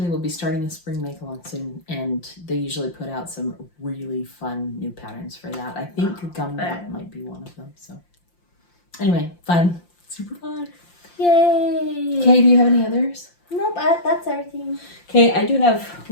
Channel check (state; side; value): late; right; 5.7 ms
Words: they will be starting a spring make-along soon. And they usually put out some really fun new patterns for that. I think Gumdrop might be one of them. So anyway, fun. Super fun. Yay. Okay, do you have any others? Nope, that's everything. Okay, I do have